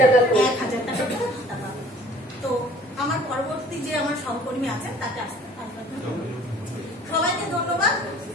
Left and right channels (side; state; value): both; normal; correlation 0.51